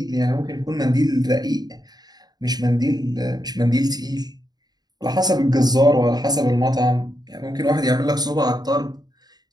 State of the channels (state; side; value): late; left; 0.19 ms